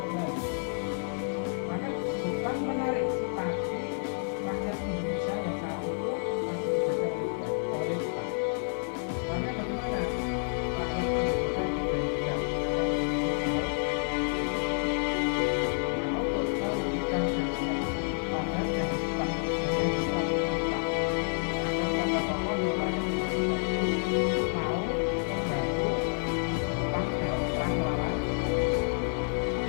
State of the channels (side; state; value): right; silent; 58 dB below the other